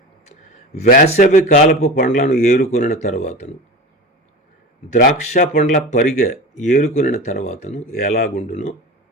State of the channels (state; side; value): normal; both; correlation 0.29